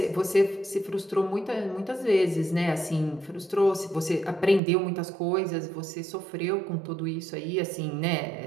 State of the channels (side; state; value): left; drops out; at 4.6 s